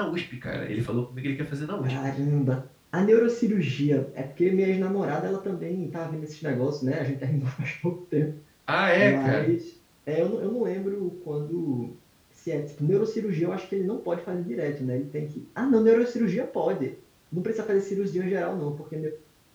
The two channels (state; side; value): identical; both; correlation 1.00